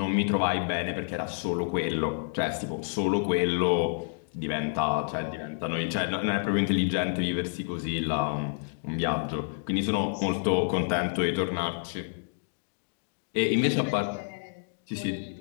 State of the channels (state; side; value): silent; right; digital silence